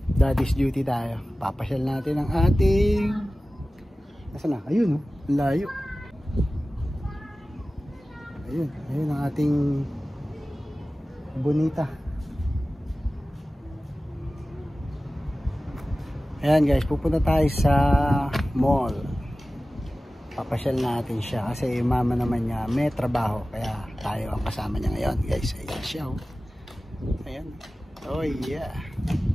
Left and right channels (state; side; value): normal; both; correlation 0.96